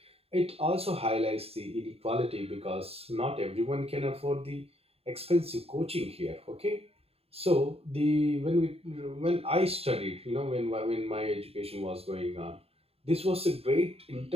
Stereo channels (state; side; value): late; left; 0.29 ms